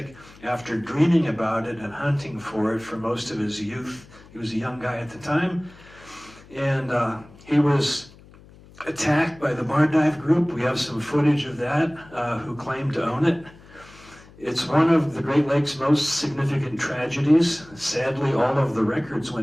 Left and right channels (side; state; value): left; noise; hum, 23 dB below the sound